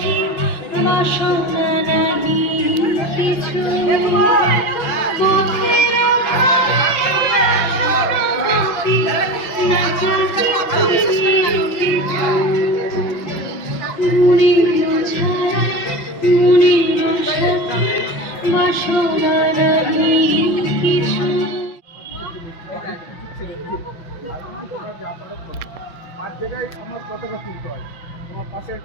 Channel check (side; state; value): right; late; 5.8 ms